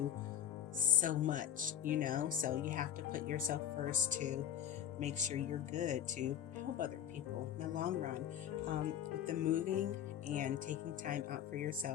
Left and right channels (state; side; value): quieter; right; 10.1 dB